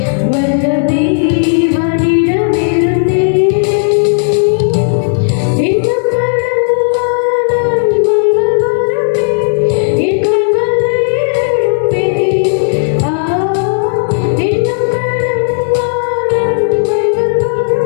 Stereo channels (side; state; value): right; silent; digital silence